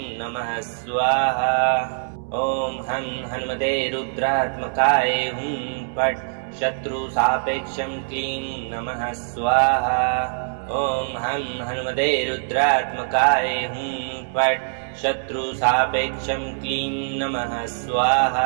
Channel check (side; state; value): left; silent; 63 dB below the other